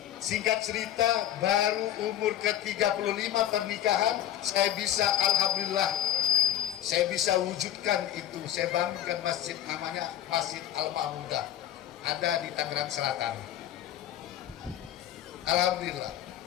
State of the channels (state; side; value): quieter; right; 11.7 dB